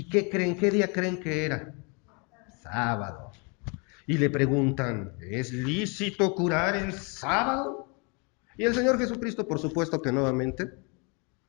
qué creen? ¿Qué día creen que era? Sábado. Y le preguntan, ¿es lícito curar en sábado? Y el Señor Jesucristo, por supuesto que nuevamente,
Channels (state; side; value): quieter; right; 33.2 dB